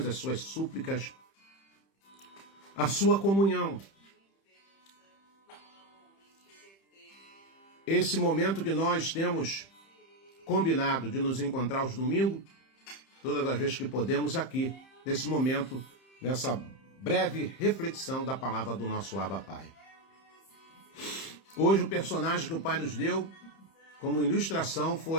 as suas súplicas, a sua comunhão. Esse momento que nós temos combinado de nos encontrar aos domingos, todas as vezes que podemos aqui, nesse momento, nessa breve reflexão da palavra do nosso Abba Pai. Hoje o personagem que o Pai nos deu como ilustração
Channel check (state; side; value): late; right; 30 ms